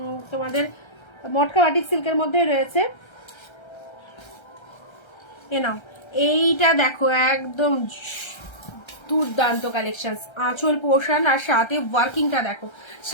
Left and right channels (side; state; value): right; late; 1.3 ms